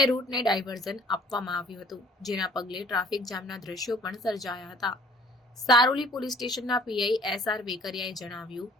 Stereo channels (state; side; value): normal; both; correlation 0.54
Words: રૂટને ડાયવર્ઝન આપવામાં આવ્યું હતું, જેના પગલે ટ્રાફિક જામના દ્રશ્યો પણ સર્જાયા હતા। સારોલી પોલીસ સ્ટેશનના પીઆઈ એસઆર વેકરિયાએ જણાવ્યું